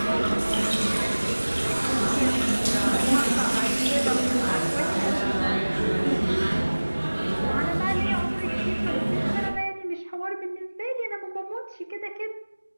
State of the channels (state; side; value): inverted; both; correlation -1.00